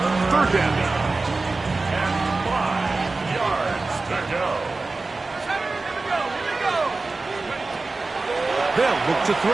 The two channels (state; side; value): quieter; left; 3.6 dB